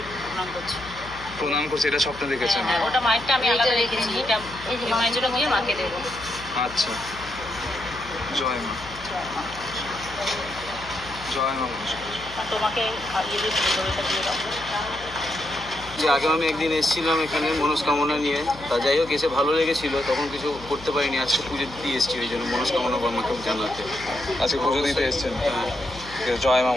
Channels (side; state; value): left; noise; hum, 17 dB below the sound